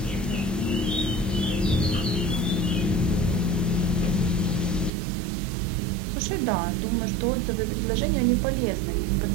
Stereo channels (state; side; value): drops out; left; at 4.9 s